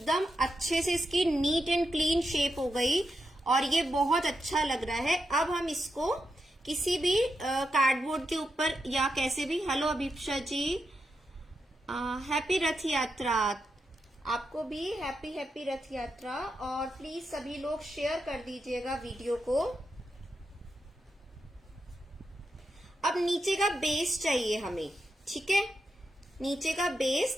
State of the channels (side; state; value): both; normal; correlation 0.85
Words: अच्छे से इसकी नीट एंड क्लीन शेप हो गई और ये बहुत अच्छा लग रहा है। अब हम इसको किसी भी कार्डबोर्ड के ऊपर या कैसे भी, हेलो अभिप्सा जी, हैप्पी रथ यात्रा। आपको भी हैप्पी हैप्पी रथ यात्रा। और प्लीज सभी लोग शेयर कर दीजिएगा वीडियो को। अब नीचे का बेस चाहिए हमें, ठीक है, नीचे का बेस,